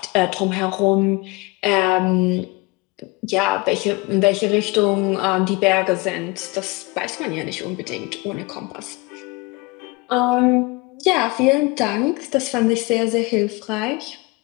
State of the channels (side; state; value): right; quieter; 24.7 dB